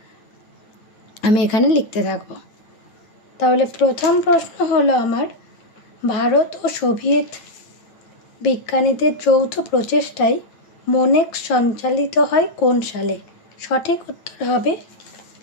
আমি এখানে লিখতে থাকব। তাহলে প্রথম প্রশ্ন হলো আমার, ভারত ও সোভিয়েত বিজ্ঞানীদের যৌথ প্রচেষ্টায় মোনেক্স সঞ্চালিত হয় কোন সালে? সঠিক উত্তর হবে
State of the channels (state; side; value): late; right; 9.0 ms